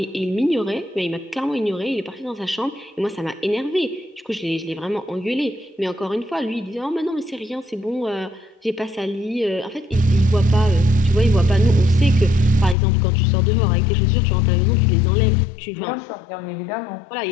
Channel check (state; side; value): drops out; right; at 12.8 s